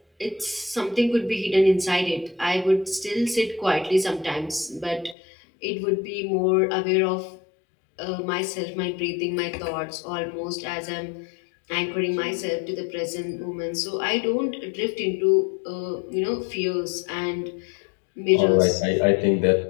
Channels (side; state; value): right; drops out; at 5.2 s